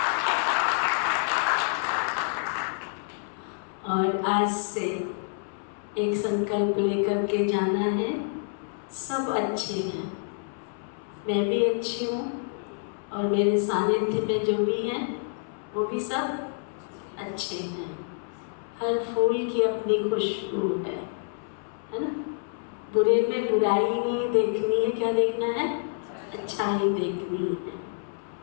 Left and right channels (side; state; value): right; silent; 60 dB below the other